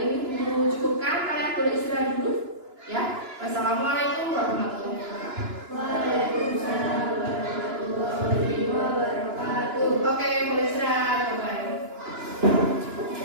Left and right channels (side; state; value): left; late; 2.9 ms